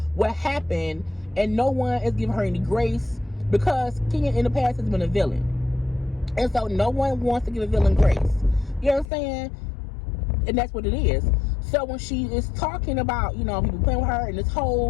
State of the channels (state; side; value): drops out; right; at 9.1 s